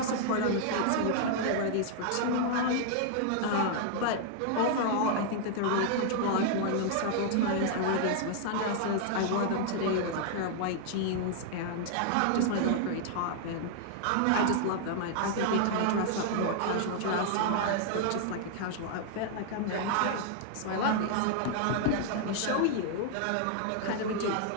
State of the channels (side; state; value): both; different; correlation -0.01